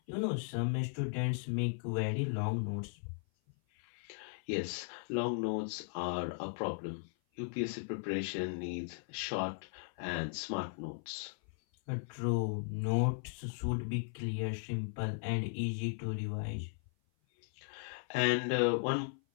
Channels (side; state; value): right; silent; 53 dB below the other